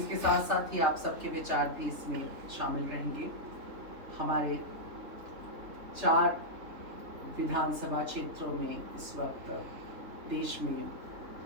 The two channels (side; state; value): left; late; 3.4 ms